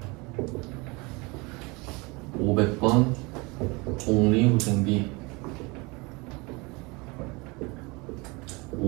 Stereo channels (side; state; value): left; quieter; 26.5 dB